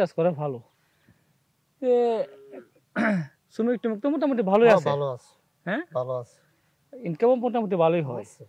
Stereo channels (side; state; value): both; identical; correlation 1.00